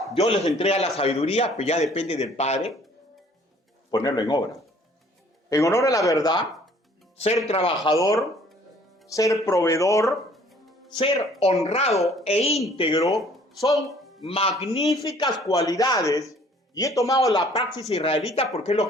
Dios les entrega la sabiduría, pero ya depende del padre ponerlo en obra. En honor a la verdad, ser trabajador, ser proveedor, ser honrado e íntegro son magníficas cualidades y he tomado la praxis israelita porque es lo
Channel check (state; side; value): normal; both; correlation 0.56